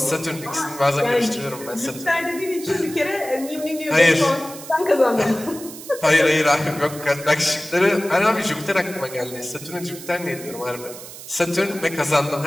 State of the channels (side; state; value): right; noise; hiss, 14 dB below the sound